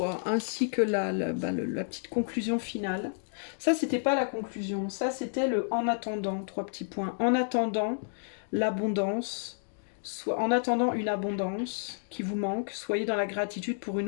Ainsi que la petite conclusion finale. Ça, c'était pas la conclusion. Ça, c'était le en attendant. 3 petits points. En attendant l'abondance, en attendant une abondance qui vous manque, soyez dans la gratitude pour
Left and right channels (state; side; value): silent; right; digital silence